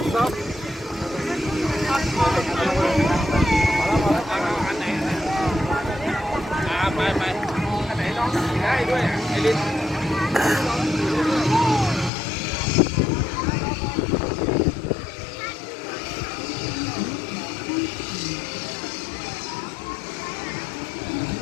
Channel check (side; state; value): right; drops out; at 12.1 s